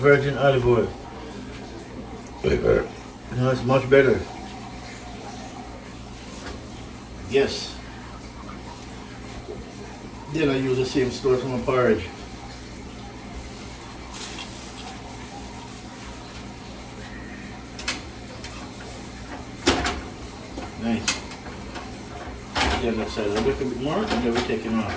olive oil. It's much better. Yes. Then I use the same stuff from a porridge. Nice. The other side a little bit more, and then we take it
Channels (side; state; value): both; identical; correlation 1.00